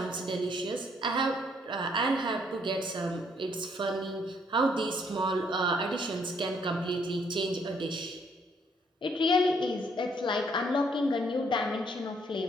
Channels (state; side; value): normal; both; correlation 0.68